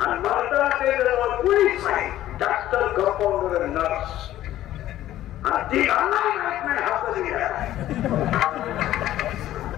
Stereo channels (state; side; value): quieter; right; 13.5 dB